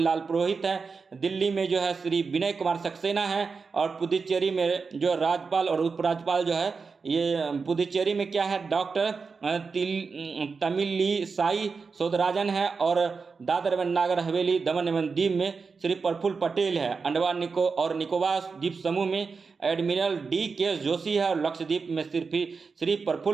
पुरोहित है। दिल्ली में जो है श्री विनय कुमार सक्सेना है। और पुदुचेरी में जो राज्यपाल और उपराज्यपाल जो है ये पुदुचेरी में क्या है? डॉक्टर तमिली साई सौदराजन है। और दादर एवं नागर हवेली दमन एवं दीव में श्री प्रफुल्ल पटेल है। अंडमान और निकोबार द्वीप समूह में एडमिरल DK जोशी है। और लक्षद्वीप में श्री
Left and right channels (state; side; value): quieter; left; 4.9 dB